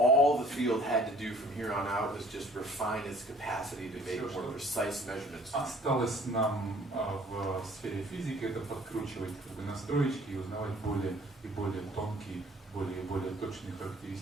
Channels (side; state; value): both; normal; correlation 0.55